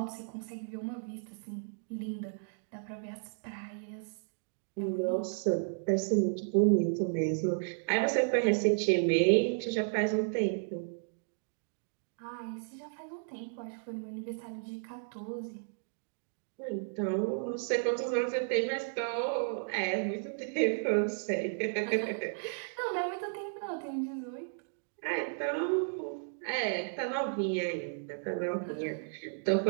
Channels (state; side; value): silent; left; digital silence